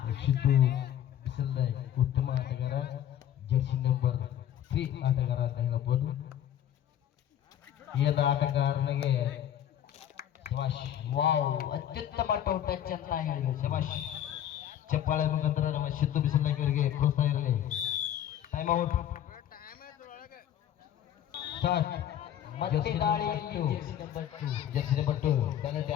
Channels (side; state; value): right; quieter; 10.7 dB